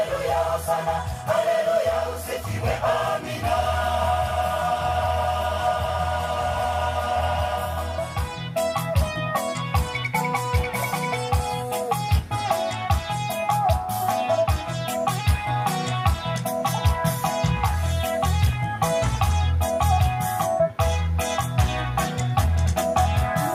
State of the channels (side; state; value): both; identical; correlation 1.00